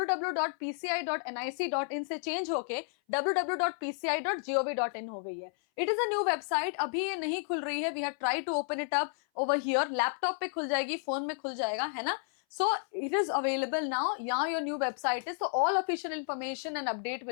से चेंज होके www.pci.gov.in हो गई है. It is a new website. अभी ये नहीं खुल रही है. We have try to open it up over here. Laptop पे खुल जाएगी, फोन में खुल जाएगा, है ना. So it is available now. Now your new website is. So all official information and update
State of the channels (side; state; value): right; silent; 57 dB below the other